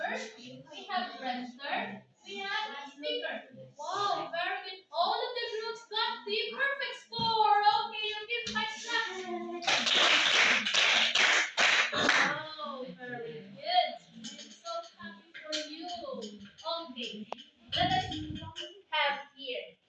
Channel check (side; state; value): both; identical; correlation 1.00